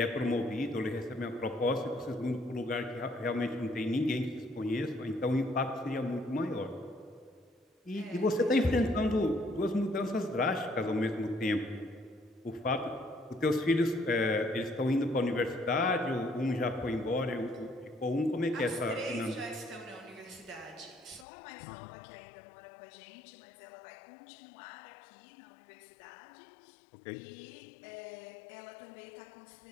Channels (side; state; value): right; drops out; at 21.2 s